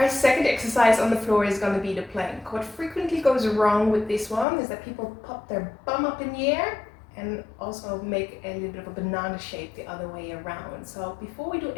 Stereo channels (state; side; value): drops out; right; at 4.5 s